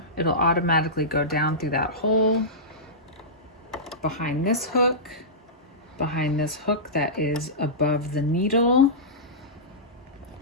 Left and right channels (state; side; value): normal; both; correlation -0.16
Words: It'll automatically go down through that hole, behind this hook that is above the needle,